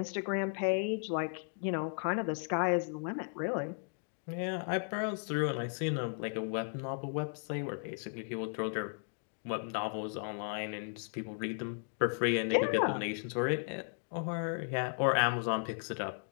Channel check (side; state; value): right; silent; 54 dB below the other